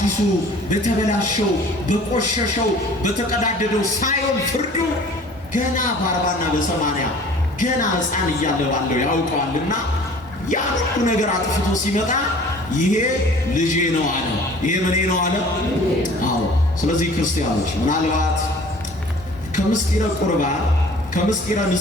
በተበላሸው በቆሸሸው በተቀዳደደው ሳይሆን ፍርዱ ገና በ40 እና በ80 ገና ሕፃን እያለ ባለው ያውቀዋልና ያ ሁሉ ነገር አጥፍቶ ሲመጣ ይሄ ልጄ ነው አለ። ይሄ ምኔ ነው አለ። አዎ። ስለዚህ ክርስቲያኖች ምናልባት ከምስጢረ ቁርባን ከምስጢረ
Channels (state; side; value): normal; both; correlation 0.48